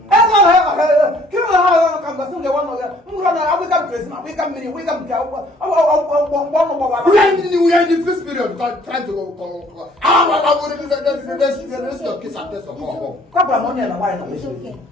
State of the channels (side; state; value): both; normal; correlation 0.59